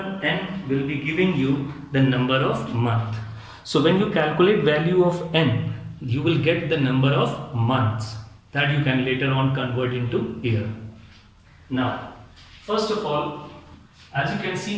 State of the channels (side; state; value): both; identical; correlation 1.00